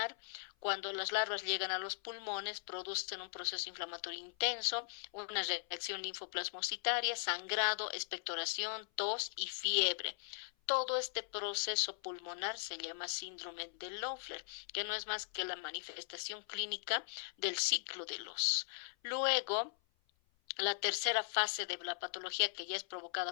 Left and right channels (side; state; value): right; silent; 52 dB below the other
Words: Cuando las larvas llegan a los pulmones, producen un proceso inflamatorio intenso, una reacción linfoplasmocitaria, sangrado, expectoración, tos y fiebre. Todo este proceso pulmonar se llama síndrome de Loeffler, que no es más que la manifestación clínica del ciclo de Los. Luego, la tercera fase de la patología, que ya es